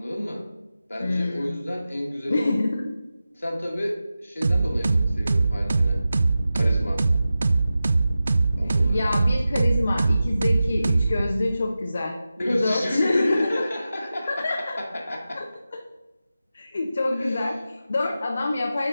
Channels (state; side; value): inverted; both; correlation -0.93